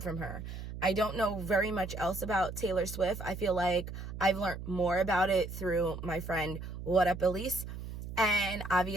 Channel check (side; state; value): right; noise; hum, 9 dB below the sound